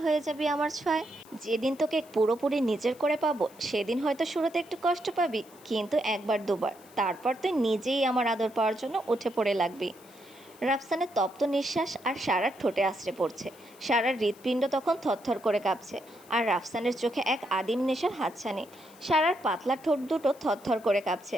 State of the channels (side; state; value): left; noise; hiss, 25 dB below the sound